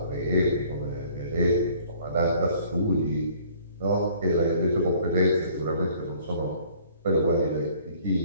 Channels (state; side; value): inverted; both; correlation -0.56